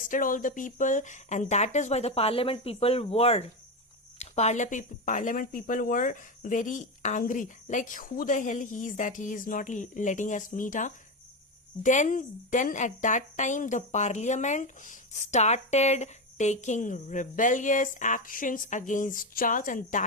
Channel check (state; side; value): normal; both; correlation 0.14